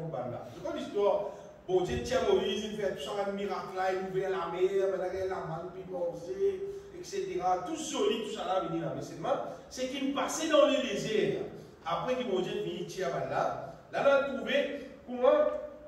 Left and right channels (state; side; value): identical; both; correlation 1.00